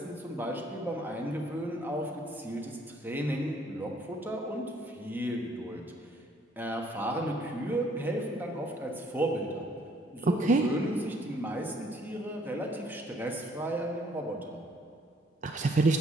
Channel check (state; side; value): normal; both; correlation 0.63